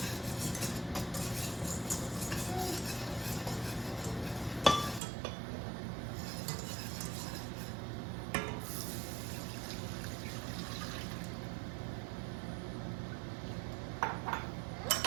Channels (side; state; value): left; drops out; at 5.0 s